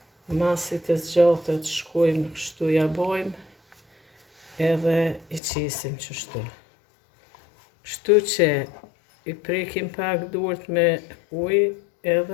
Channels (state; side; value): drops out; right; at 5.4 s